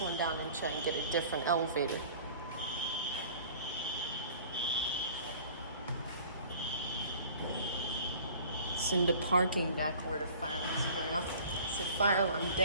down and try and get a different elevator. It's in the parking deck where the fire alarm's going off. It's a fire alarm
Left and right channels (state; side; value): inverted; both; correlation -0.47